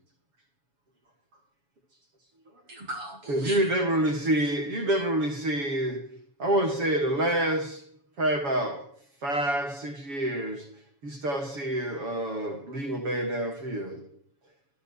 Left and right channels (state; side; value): late; left; 7.1 ms